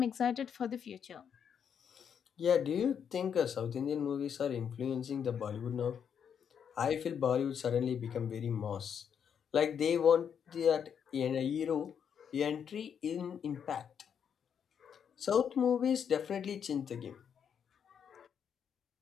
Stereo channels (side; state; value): right; quieter; 7.8 dB